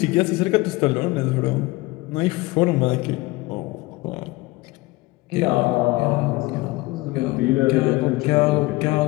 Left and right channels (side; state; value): right; quieter; 21.1 dB